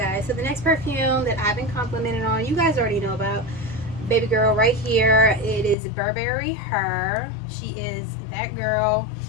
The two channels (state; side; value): drops out; right; at 5.8 s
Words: So the next perfume that I've been complimented on, you guys already know about. Baby girl right here. It is Burberry Her. She is that girl.